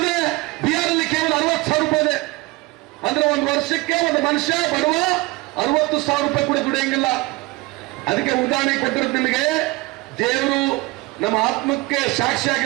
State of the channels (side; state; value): left; quieter; 22.9 dB